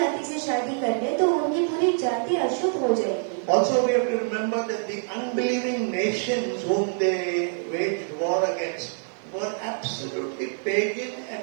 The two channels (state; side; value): silent; left; 61 dB below the other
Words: से शादी कर ले तो उनकी पूरी जाति अशुद्ध हो जाएगी। Also, we have to remember that the unbelieving nations whom they waged war against were absolutely pagan